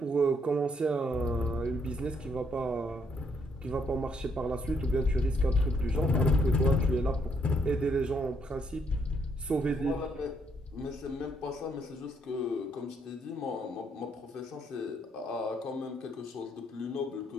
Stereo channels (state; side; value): normal; both; correlation 0.72